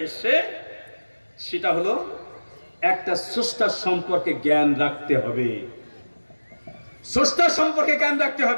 এসছে সেটা হলো একটা স্রষ্টার সম্পর্কে জ্ঞান রাখতে হবে। স্রষ্টার সম্পর্কে জ্ঞান রাখতে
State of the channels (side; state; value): both; inverted; correlation -1.00